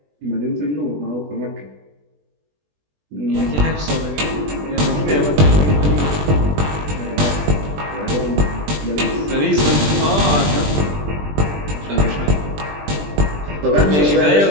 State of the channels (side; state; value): left; late; 20 ms